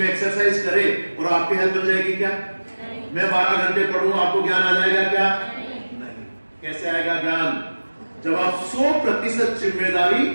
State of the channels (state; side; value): inverted; both; correlation -1.00